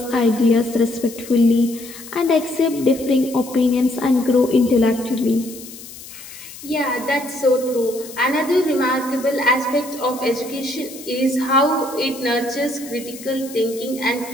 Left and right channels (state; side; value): noise; left; hiss, 15 dB below the sound